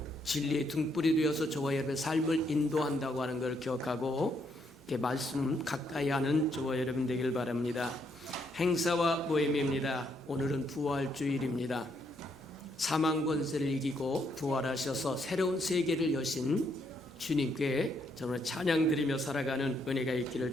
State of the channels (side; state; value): both; normal; correlation 0.74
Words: 진리의 등불이 되어서 저와 여러분의 삶을 인도한다고 하는 걸 기억하고 말씀 가까이 하는 저와 여러분 되길 바랍니다. 행사와 모임입니다. 오늘은 부활주일입니다. 사망 권세를 이기고 부활하셔서 새로운 세계를 여신 주님께 정말 찬양 드리며 살아가는 은혜가 있기를